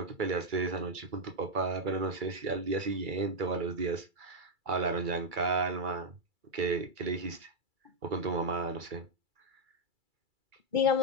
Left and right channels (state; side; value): late; left; 2.3 ms